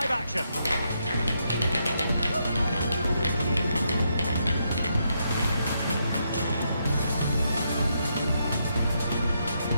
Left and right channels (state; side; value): inverted; both; correlation -0.79